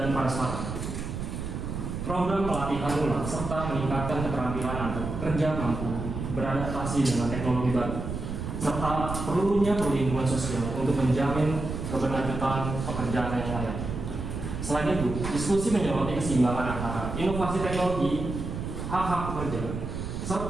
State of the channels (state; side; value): noise; right; rumble, 5 dB below the sound